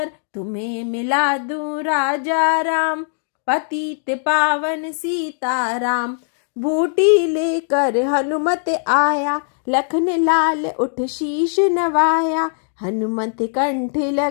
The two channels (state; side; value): silent; right; digital silence